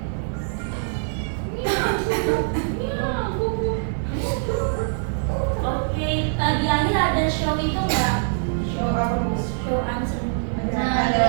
Oke, di akhir ada show itu nggak? Show apa Bu? Show answer.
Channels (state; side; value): silent; left; digital silence